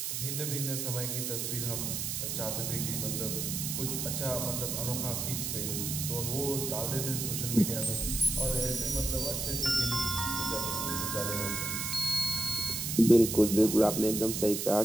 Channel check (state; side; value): noise; right; hiss, 2 dB below the sound